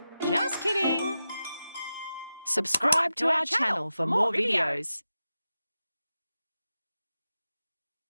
Just kidding. Subscribe to our channel for more videos.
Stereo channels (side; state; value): both; inverted; correlation -0.91